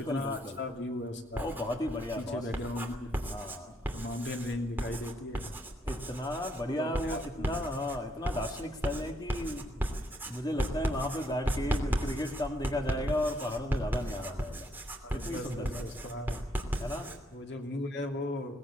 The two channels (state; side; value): normal; both; correlation 0.73